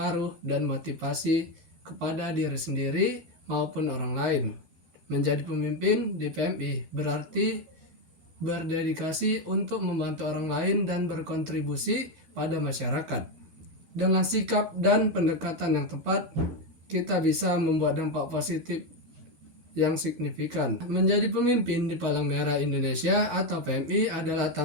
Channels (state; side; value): late; left; 12 ms